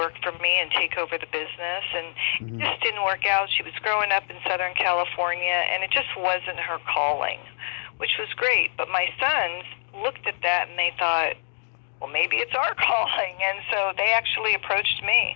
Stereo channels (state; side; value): silent; right; digital silence